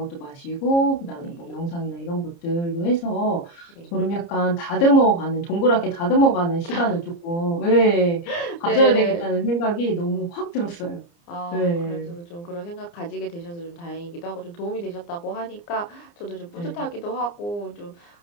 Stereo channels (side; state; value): right; late; 29 ms